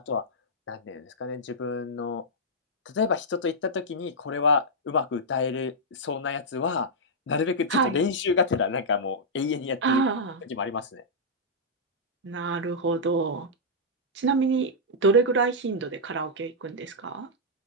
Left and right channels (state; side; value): normal; both; correlation -0.09